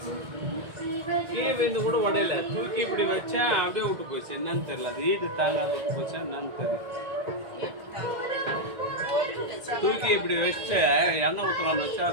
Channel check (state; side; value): late; left; 1.9 ms